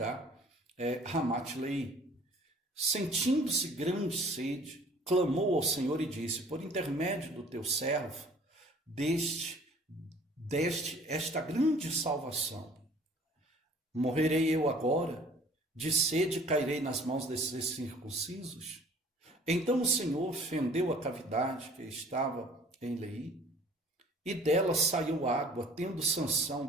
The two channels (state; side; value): normal; both; correlation 0.52